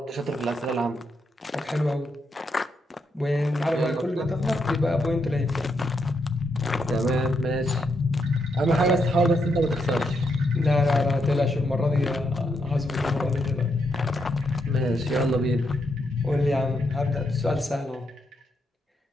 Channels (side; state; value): both; normal; correlation 0.80